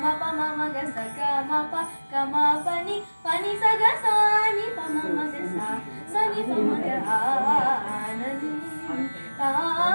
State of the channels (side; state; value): both; inverted; correlation -1.00